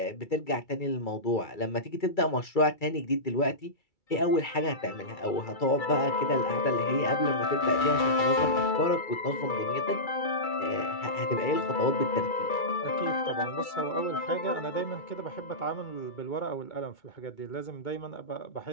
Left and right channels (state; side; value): late; right; 2.3 ms